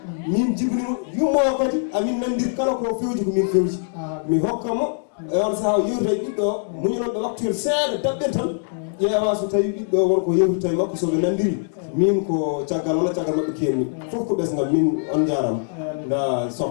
min jibinimo yummo kadi amin nandiri kala ko fewji ko min fewji mi hokkamo e on saaha yewta e ɓiɗɗo muñunoɓe waktuyel seeɗa daɓɓen tan ƴeewa so tawi ɓiɗɗo wonko yewtita e makko soɓe nandiri min ko caggal walla caggal mabɓe kenni fof ko ɓesgal min on jarama nda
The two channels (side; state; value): right; silent; digital silence